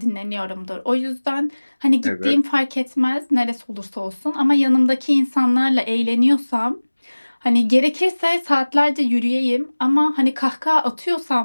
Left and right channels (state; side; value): inverted; both; correlation -1.00